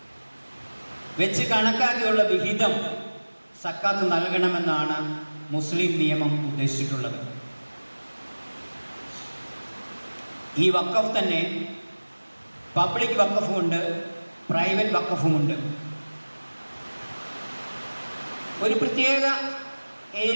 വെച്ച് കണക്കാക്കിയുള്ള വിഹിതം സക്കാത്ത് നൽകണമെന്നാണ് മുസ്ലിം നിയമം ഉദ്ദേശിച്ചിട്ടുള്ളത്. ഈ വഖഫ് തന്നെ പബ്ലിക് വഖഫുമുണ്ട്, പ്രൈവറ്റ് വഖഫുമുണ്ട്. ഒരു പ്രത്യേക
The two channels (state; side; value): inverted; both; correlation -1.00